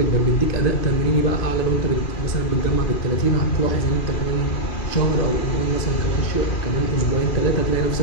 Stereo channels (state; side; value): late; right; 2.5 ms